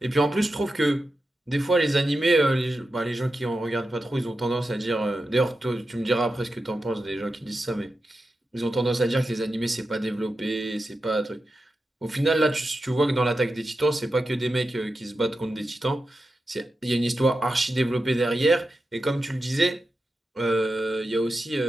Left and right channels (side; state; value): both; normal; correlation 0.90